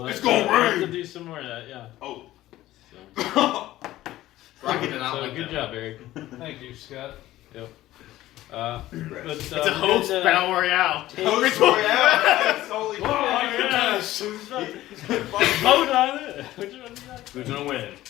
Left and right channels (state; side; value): quieter; right; 15.4 dB